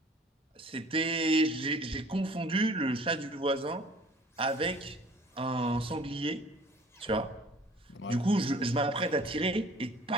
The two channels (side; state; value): both; normal; correlation 0.51